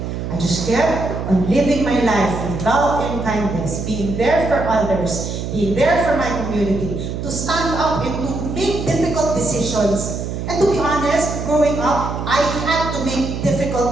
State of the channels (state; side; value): noise; right; hum, 5 dB below the sound